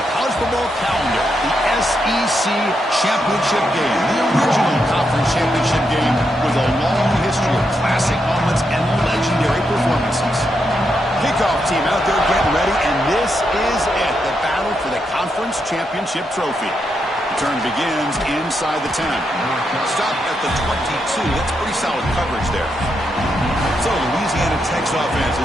college football calendar, the SEC Championship game, the original conference championship game with a long history of classic moments and legendary performances. Kickoff team out there getting ready, and this is it, the battle for the conference championship trophy. The turn begins inside the 10. Stop at the 22. That's pretty solid coverage there. So Louisiana Tech's offense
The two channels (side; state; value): both; normal; correlation 0.82